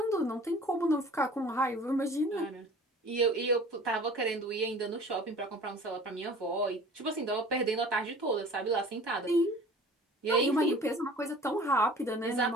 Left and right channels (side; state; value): both; normal; correlation 0.45